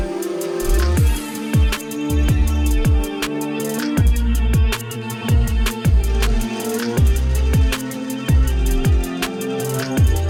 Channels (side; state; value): both; identical; correlation 1.00